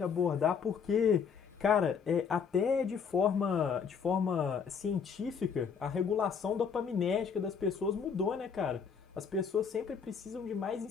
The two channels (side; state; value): right; quieter; 6.4 dB